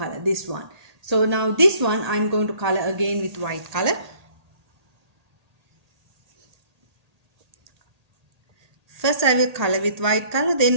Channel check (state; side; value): late; left; 1.8 ms